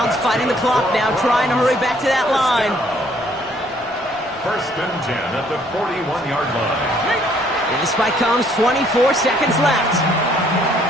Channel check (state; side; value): normal; both; correlation 0.63